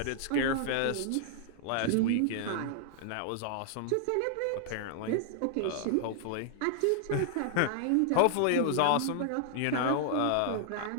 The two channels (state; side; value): different; both; correlation -0.01